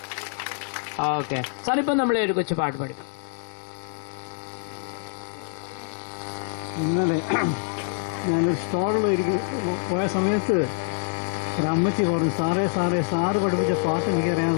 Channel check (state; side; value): silent; right; 61 dB below the other